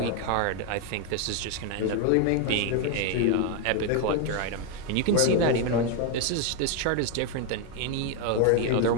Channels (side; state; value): both; different; correlation 0.01